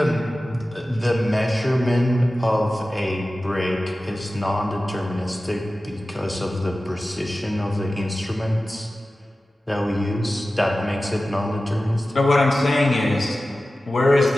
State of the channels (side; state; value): both; normal; correlation 0.95